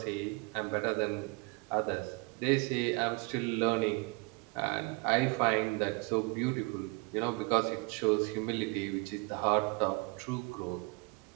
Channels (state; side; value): quieter; left; 27.8 dB